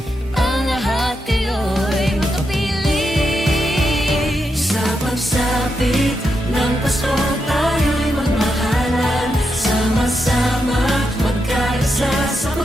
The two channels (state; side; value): normal; both; correlation 0.84